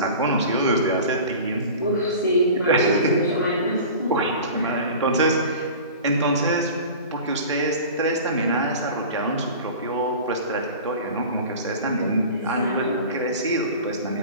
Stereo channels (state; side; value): inverted; both; correlation -0.37